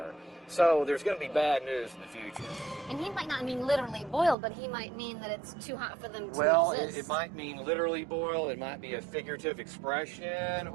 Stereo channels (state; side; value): drops out; left; at 4.4 s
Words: So there's going to be bad news in the future. And he might not mean literally boiled, but he might mean that it's too hot for them to Well, exist. it might mean literally boil, it might be a figurative expression,